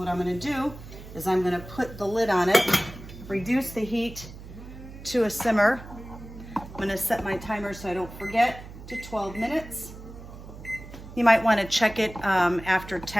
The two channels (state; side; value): noise; right; hum, 15 dB below the sound